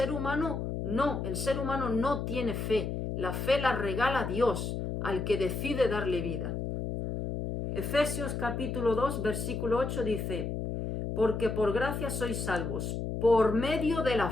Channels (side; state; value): left; noise; hum, 3 dB below the sound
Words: humano? No, el ser humano no tiene fe. La fe la regala Dios al que decide darle vida. Efesios capítulo 2, versículo 8 dice, porque por gracia sois salvos, por medio de la